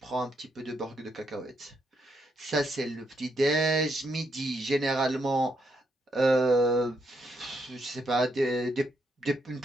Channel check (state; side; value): normal; both; correlation 0.78